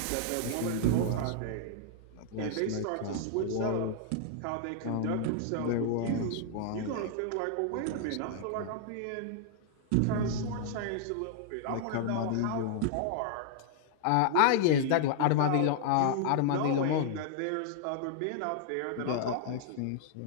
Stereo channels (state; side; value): different; both; correlation -0.01